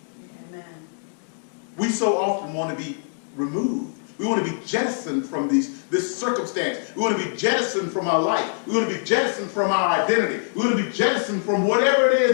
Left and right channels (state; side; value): silent; right; digital silence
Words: Amen. We so often want to be removed. We want to be jettisoned from this circumstance. We want to be jettisoned from our life. We want to be jettisoned from our identity. We want to be jettisoned from whatever it